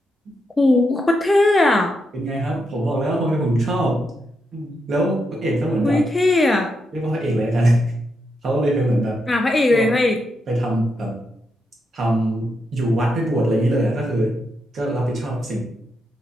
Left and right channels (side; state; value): both; normal; correlation 0.83